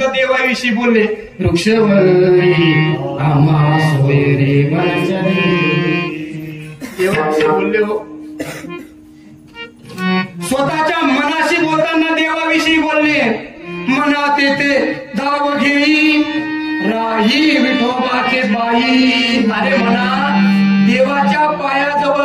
देवाविषयी बोलले. वृक्षवरी आम्हा सोय रे देवाविषयी बोलले. हो स्वतःच्या मनाशी बोलताना देवाविषयी बोलले. मनात येते धाव घेई राही विठोबाचे बाई. अरे म्हणा देवाच्या पायाजवळ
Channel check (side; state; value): both; identical; correlation 1.00